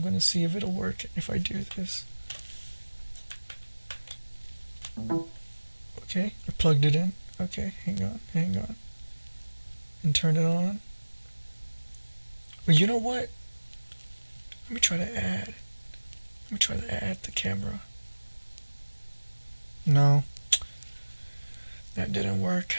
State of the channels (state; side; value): inverted; both; correlation -1.00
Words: gonna see if it'll work if I do this. Okay, I plugged it in. Okay, hang on. And turn it on. Well, you know what? Let me try to add the camera. No, that didn't work.